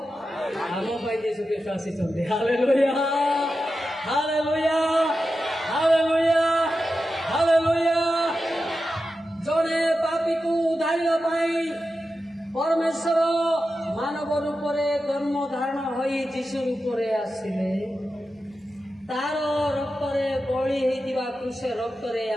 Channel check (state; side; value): normal; both; correlation 0.91